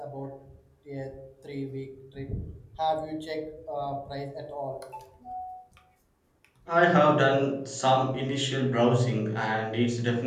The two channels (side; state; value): both; identical; correlation 1.00